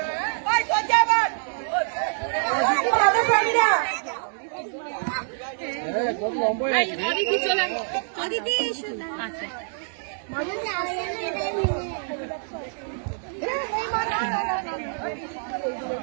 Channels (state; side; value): silent; left; 60 dB below the other